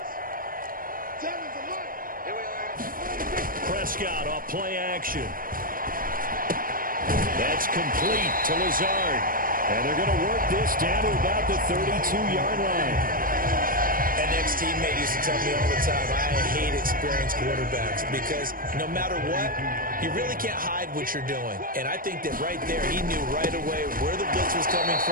Prescott off play action. That's complete to Lazard. And they're going to work this down to about the 32-yard line. An ex-teammate used to tell me all the time, I hate experienced quarterbacks because no matter what, you really can't hide what you're doing. And I think that right there, he knew right away where the blitz was coming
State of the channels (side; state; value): left; late; 0.41 ms